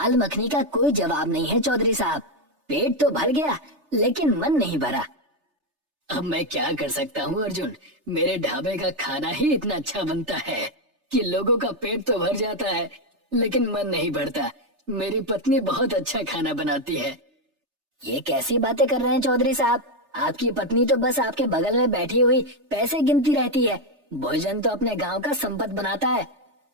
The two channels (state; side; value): late; left; 3.3 ms